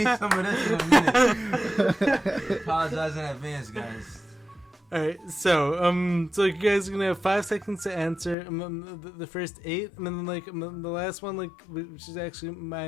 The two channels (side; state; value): right; drops out; at 8.3 s